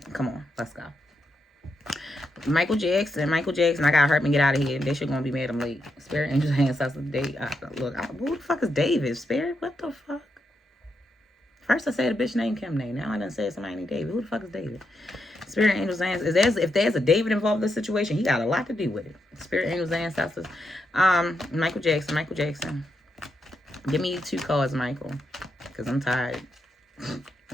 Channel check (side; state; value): both; normal; correlation 0.82